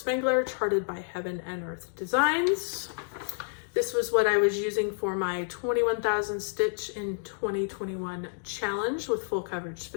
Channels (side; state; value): right; silent; digital silence